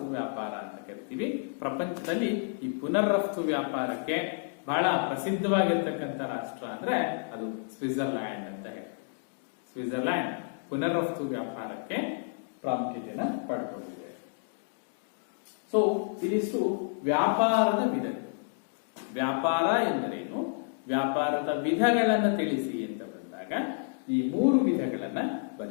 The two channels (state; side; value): silent; right; digital silence